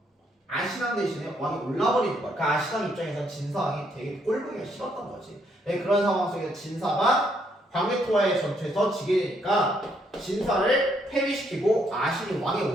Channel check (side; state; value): both; normal; correlation 0.72